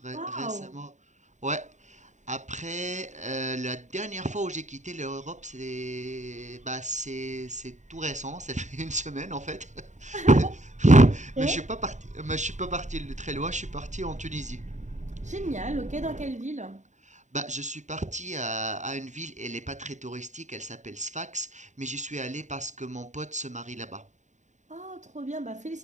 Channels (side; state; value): left; late; 0.34 ms